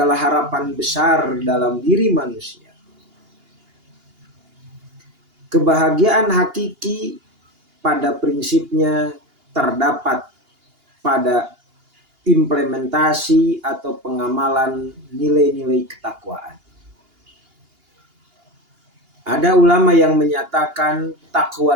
harapan besar dalam diri manusia. Kebahagiaan hakiki pada prinsipnya terdapat pada implementasi atau pengamalan nilai-nilai ketakwaan. Ada ulama yang menyatakan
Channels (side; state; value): left; late; 2.8 ms